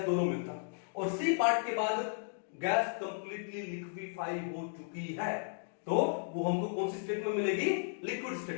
दोनों मिलता है। और सी पार्ट के बाद गैस कंप्लीटली लिक्विफाई हो चुकी है, तो वो हमको कौन सी स्टेट में मिलेगी? लिक्विड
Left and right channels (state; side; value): silent; right; digital silence